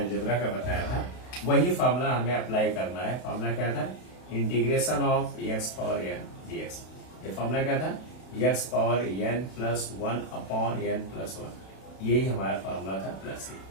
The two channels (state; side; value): late; right; 32 ms